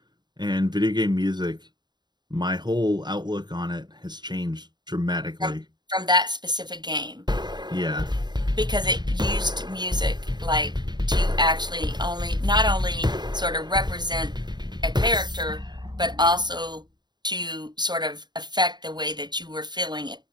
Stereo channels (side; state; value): left; late; 0.21 ms